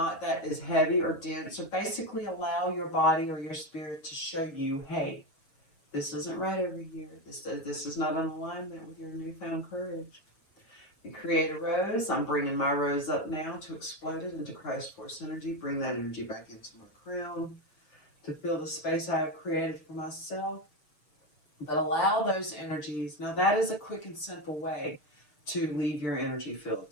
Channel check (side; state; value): right; late; 6.7 ms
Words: heavy or dense, or basically allow your body or your spirit to show you, hey, this isn't right over here. This is not in alignment with your newfound courage. You create a rose. I'm bringing my rose up now to explode it into Christ Force energy. Bring that energy back into my crown to fill the space I have created for myself. But allow those energies. Now that is a quick and simple way to leave your energy field,